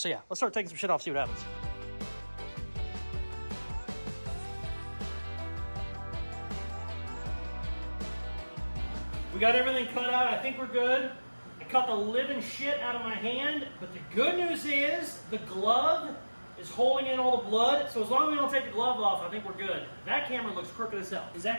yeah, let's start taking some shit off, see what happens. We got everything cut out. I think we're good. I cut the living shit out of my hand, but the good news is the glove is holding in all the blood. So as long as we don't take the glove off, I think we're good. That camera looks crooked as hell. Is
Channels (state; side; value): inverted; both; correlation -1.00